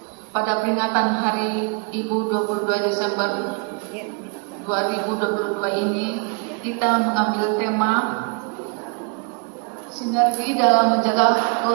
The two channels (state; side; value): quieter; left; 35.5 dB